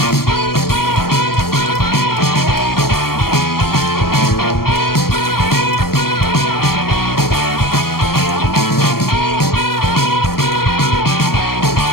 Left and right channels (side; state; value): right; late; 0.94 ms